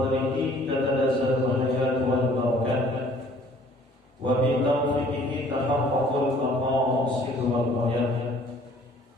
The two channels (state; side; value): normal; both; correlation 0.55